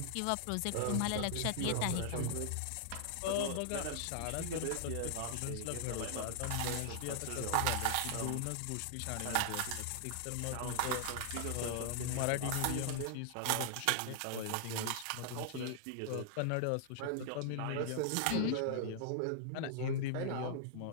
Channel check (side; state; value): both; different; correlation 0.00